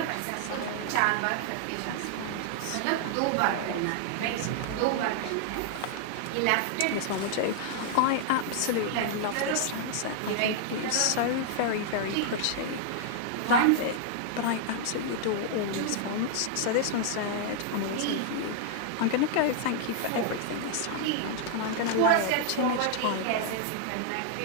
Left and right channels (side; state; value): both; different; correlation 0.00